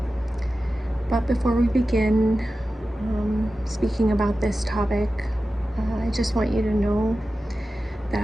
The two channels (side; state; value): both; normal; correlation 0.94